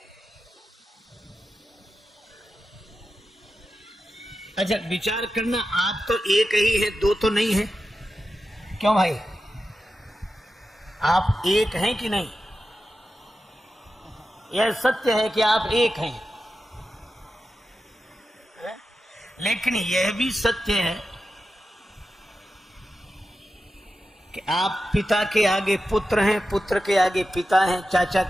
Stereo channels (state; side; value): normal; both; correlation 0.91